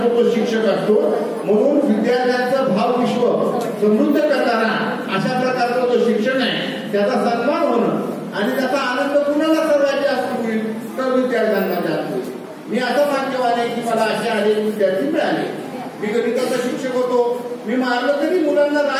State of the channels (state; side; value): identical; both; correlation 1.00